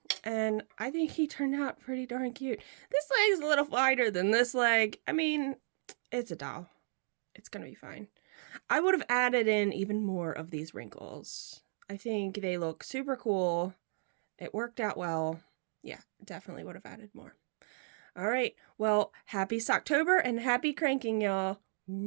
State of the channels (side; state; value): left; silent; digital silence